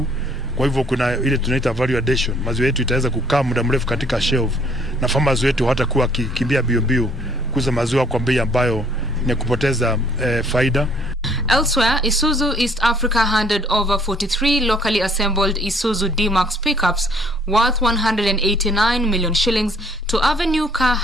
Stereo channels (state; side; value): normal; both; correlation 0.61